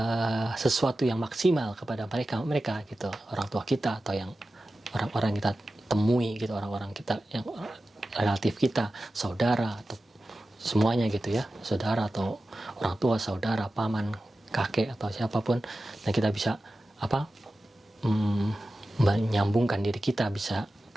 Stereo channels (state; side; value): normal; both; correlation 0.94